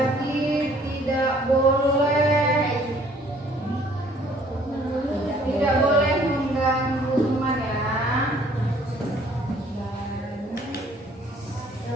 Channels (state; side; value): normal; both; correlation 0.58